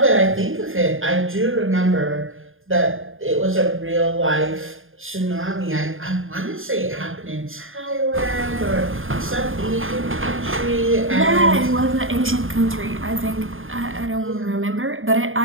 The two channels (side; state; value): left; late; 0.59 ms